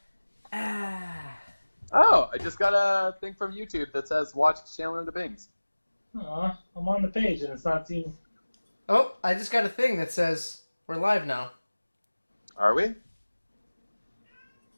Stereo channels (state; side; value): inverted; both; correlation -1.00